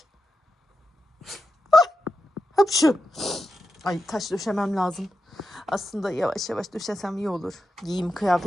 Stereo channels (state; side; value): normal; both; correlation 0.89